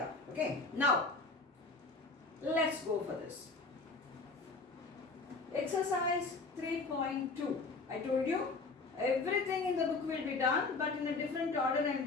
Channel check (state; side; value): quieter; right; 3.8 dB